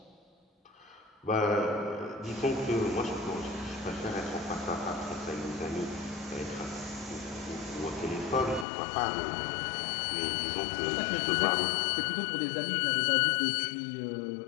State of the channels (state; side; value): drops out; right; at 8.7 s